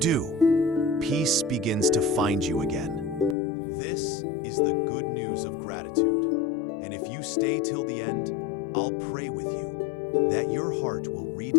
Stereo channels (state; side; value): drops out; right; at 3.4 s